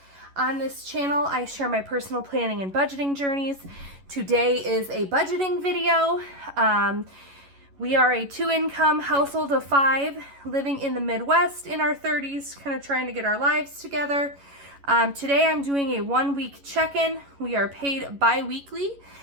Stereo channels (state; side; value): late; left; 11 ms